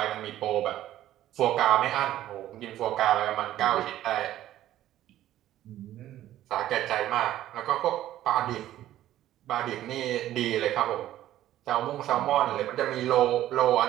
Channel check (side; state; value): left; quieter; 13.2 dB